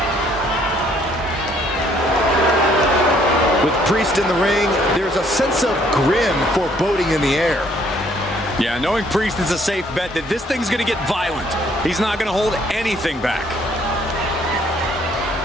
With Priest in the ring, there's a sense of grim foreboding in the air. Yeah, knowing Priest is a safe bet that this thing's going to get violent. He's not going to hold anything back.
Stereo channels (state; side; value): normal; both; correlation 0.64